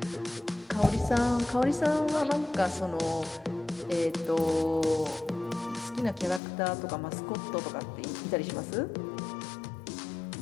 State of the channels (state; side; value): drops out; right; at 6.4 s